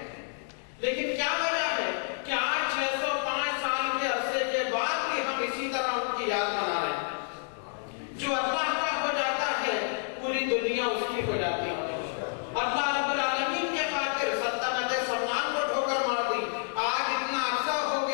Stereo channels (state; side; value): silent; right; 58 dB below the other